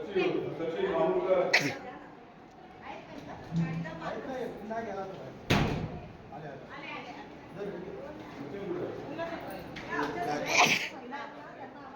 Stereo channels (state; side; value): identical; both; correlation 1.00